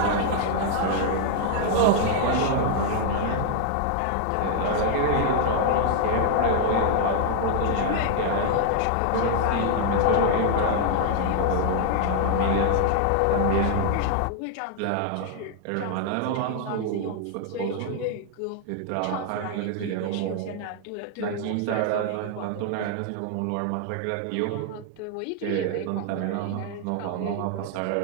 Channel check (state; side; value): different; both; correlation 0.00